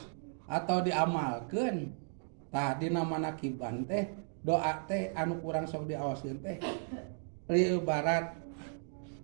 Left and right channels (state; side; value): silent; left; 54 dB below the other